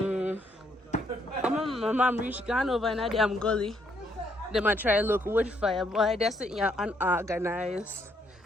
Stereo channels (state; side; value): normal; both; correlation 0.72